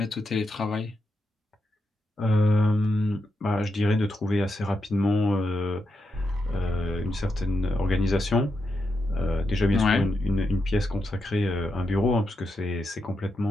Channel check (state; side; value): normal; both; correlation 0.85